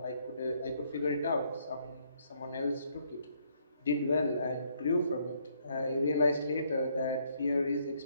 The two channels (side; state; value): both; inverted; correlation -0.69